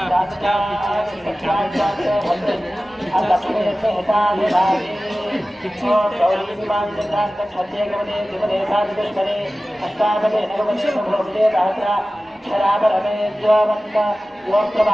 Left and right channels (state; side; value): normal; both; correlation 0.96